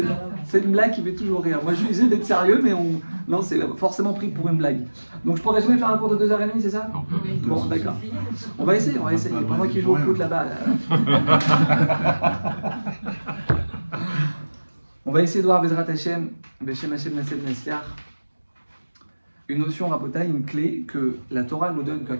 c'est une blague qui fait toujours rire. Moi, je vais essayer d'être sérieux, mais non, c'est forcément pris pour une blague. Donc, je pourrais jamais faire un cours de 2h30, c'est ça? Bon, d'accord. On va essayer. Pour moi qui joue au foot là-bas. On va essayer de voir Bezrat Hashem, Beshem Hashem Nasel Nasiach, une notion Rabotai, une clé que la Torah nous donne, que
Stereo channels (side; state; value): both; inverted; correlation -1.00